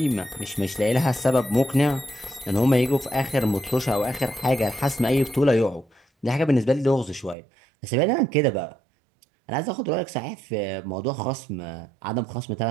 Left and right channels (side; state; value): left; drops out; at 7.4 s